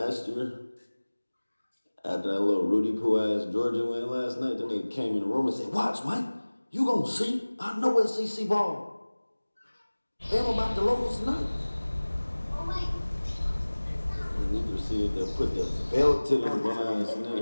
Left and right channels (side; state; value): both; inverted; correlation -1.00